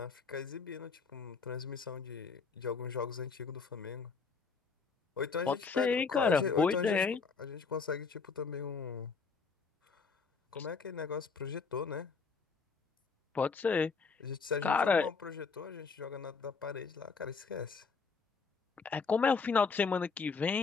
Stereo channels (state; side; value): quieter; right; 5.0 dB